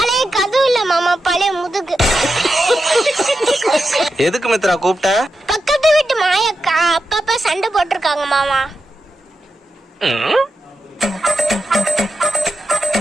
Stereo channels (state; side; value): normal; both; correlation 0.89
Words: கதவு இல்ல மாமா, பழைய முதுகு. எதுக்கு மித்ரா கூப்பிட்ட? பக்கத்து வீட்டு மாயக்கா அப்பப்ப சண்டை போட்டிருக்காங்க மாமா.